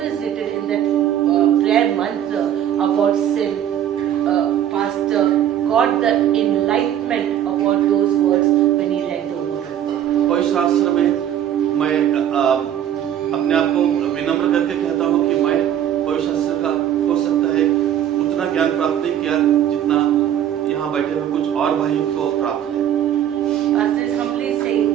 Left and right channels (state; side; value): quieter; left; 10.6 dB